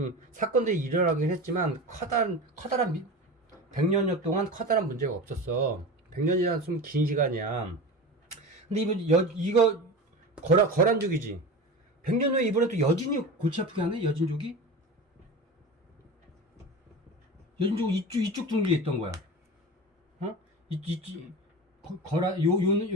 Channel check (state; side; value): normal; both; correlation 0.29